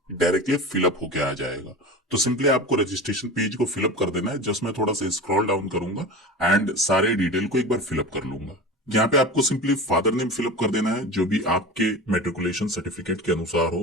डायरेक्टली फिलअप होके आ जाएगा। तो सिंपली आपको रजिस्ट्रेशन पेज को फिलअप कर देना है। जस्ट मैं थोड़ा सा स्क्रॉल डाउन करूंगा एंड सारे डिटेल को एक बार फिलअप कर लूंगा। यहाँ पे आपको सिंपली फादर नेम फिलअप कर देना है जो भी आपके मेट्रिकुलेशन सर्टिफिकेट के अनुसार हो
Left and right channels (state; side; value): normal; both; correlation 0.31